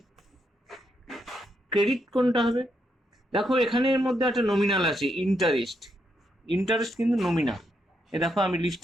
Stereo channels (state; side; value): normal; both; correlation 0.79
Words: ক্রেডিট কোনটা হবে? দেখো এখানের মধ্যে একটা নমিনাল আছে, ইন্টারেস্ট। ইন্টারেস্ট কিন্তু নমিনাল। এ দেখো আমি